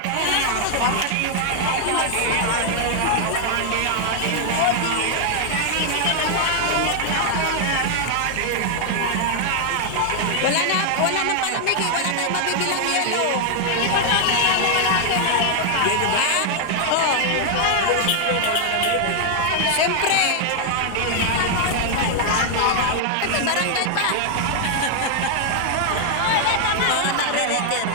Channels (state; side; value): different; both; correlation 0.00